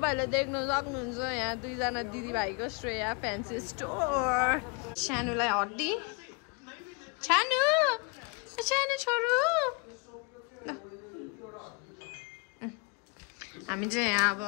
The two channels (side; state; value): right; quieter; 32.8 dB